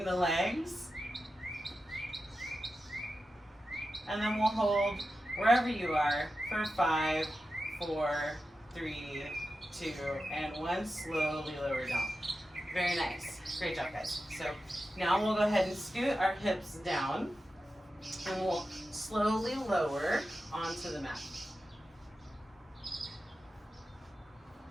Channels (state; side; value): normal; both; correlation 0.92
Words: the legs. And then we'll hold wherever you are for 5, 4, 3, 2, and 1. Slowly lower down. Very nice. Great job, guys. So now we'll go ahead and scoot our hips down. And we'll slowly lower onto the mat.